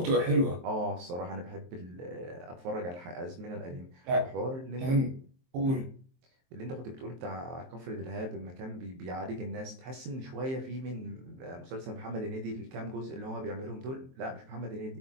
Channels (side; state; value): left; late; 23 ms